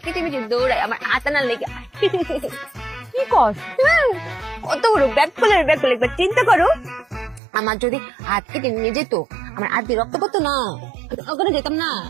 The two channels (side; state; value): left; drops out; at 7.4 s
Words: পিছিয়ে দৌড়ায় আমার আতানা লেগে কি কর কত বড় ব্যাককলের একবার চিন্তা করো আমার যদি হাত কেটে নিয়ে যেত আমার হাত দিয়ে রক্ত পড়তো না ওখানে যেতাম না